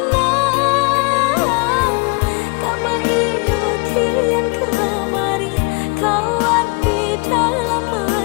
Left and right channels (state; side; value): quieter; right; 30.9 dB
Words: Kama iyo kian kemari kawan di dalam